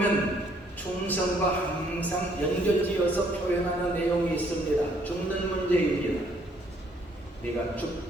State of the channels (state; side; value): normal; both; correlation 0.65